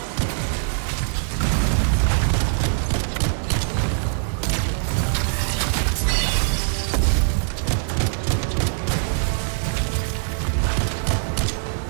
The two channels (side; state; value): left; silent; 58 dB below the other